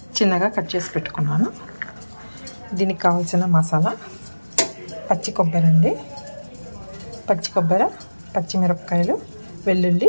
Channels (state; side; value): inverted; both; correlation -1.00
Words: చిన్నగా కట్ చేసి పెట్టుకున్నాను. దీనికి కావాల్సిన మసాలా పచ్చి కొబ్బరి అండి, పచ్చి కొబ్బరి, పచ్చిమిరపకాయలు,